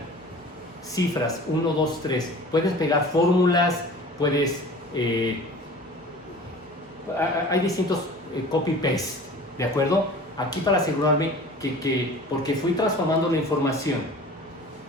cifras 1, 2, 3. Puedes pegar fórmulas, puedes hay distintos copy paste, ¿de acuerdo? Aquí para asegurarme porque fui transformando la información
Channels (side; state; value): both; normal; correlation 0.42